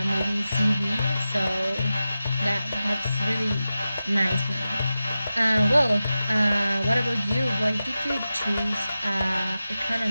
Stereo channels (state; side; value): inverted; both; correlation -0.93